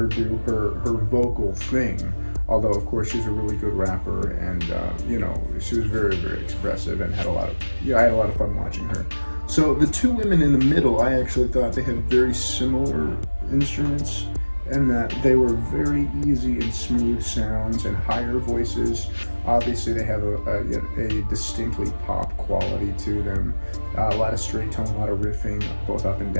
do her vocal thing. Although of course she's a really good rapper, and you know, she was very, very expressive and had a lot of, I had a lot of fun watching her. So the two women in the middle, I actually thought they had very similar instruments, and that they were very easy and smooth sounds and higher voices. Obviously they have a distinctly pop quality to them. A lot of straight tone, a lot of riffing, both up and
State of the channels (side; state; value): both; inverted; correlation -1.00